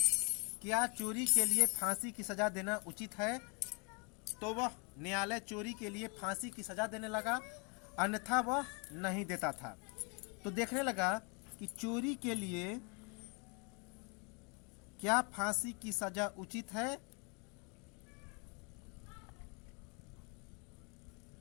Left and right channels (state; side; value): quieter; right; 33.8 dB